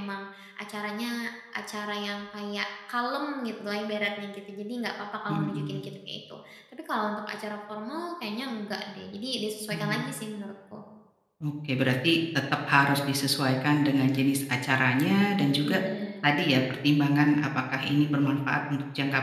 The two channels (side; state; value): both; identical; correlation 1.00